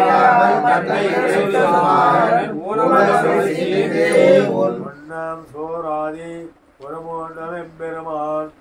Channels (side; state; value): both; identical; correlation 1.00